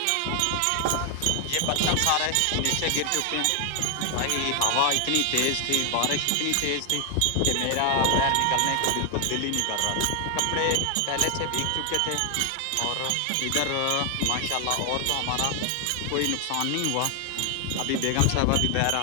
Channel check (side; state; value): both; different; correlation 0.00